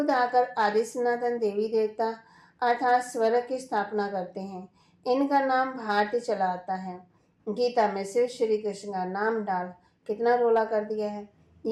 आकर आदि सनातन देवी देवता अर्थात स्वर्ग की स्थापना करते हैं। इनका नाम भारती चला आता है। गीता में शिव श्री कृष्ण का नाम डाल कितना रोला कर दिया है।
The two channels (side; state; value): both; identical; correlation 1.00